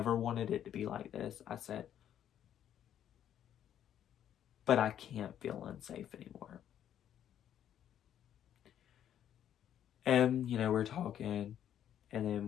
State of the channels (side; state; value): right; quieter; 10.3 dB